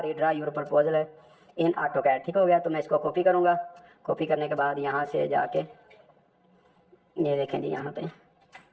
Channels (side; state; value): both; identical; correlation 1.00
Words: redraw your proposal in AutoCAD, ठीक हो गया। तो मैं इसको कॉपी करूँगा। कॉपी करने के बाद यहाँ से जाके ये देखें जी, यहाँ पे